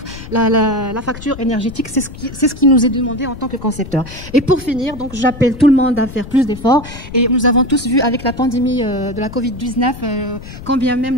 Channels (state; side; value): noise; left; rumble, 13 dB below the sound